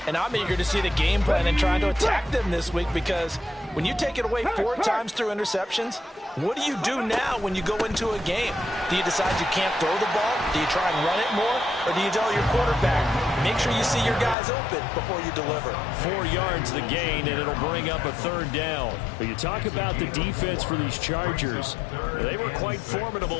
And I'm eager to see the game plan and trying to attack them this week, because when you take it away 4 times through interceptions, what do you do now when you go into a game? Do you decide you can't throw the ball? Do you try and run it more? Or do you tell your quarterback, make sure you see your guys open before you deliver? 4 yards the gain, and it'll bring up a third down. But you talk about the defense for these Chargers. They were quite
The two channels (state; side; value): drops out; right; at 14.4 s